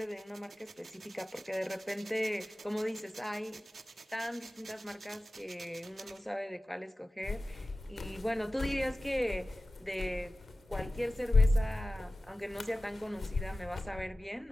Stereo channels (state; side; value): normal; both; correlation 0.96